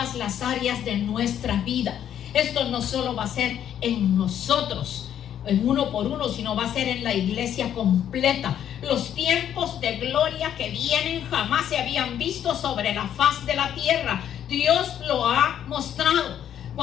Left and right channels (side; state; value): right; quieter; 10.0 dB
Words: las áreas de nuestra vida. Esto no solo va a ser en nosotros, en uno por uno, sino va a ser en la iglesia completa. Los tiempos de gloria que vienen jamás se habían visto sobre la faz de la tierra. Dios lo ha mostrado.